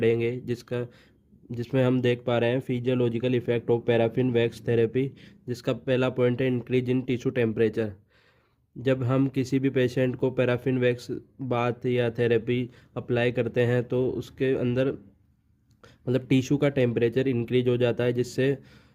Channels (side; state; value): both; identical; correlation 1.00